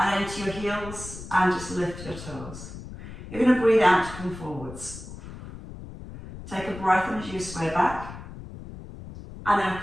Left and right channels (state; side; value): noise; left; rumble, 13 dB below the sound